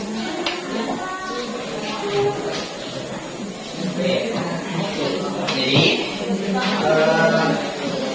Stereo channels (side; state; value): both; identical; correlation 1.00